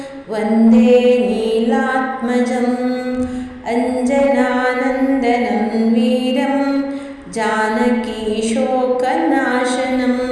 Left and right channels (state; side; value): identical; both; correlation 1.00